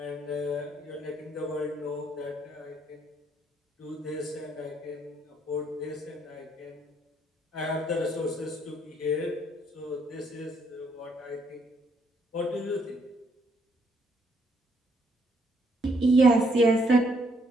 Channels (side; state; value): both; normal; correlation 0.70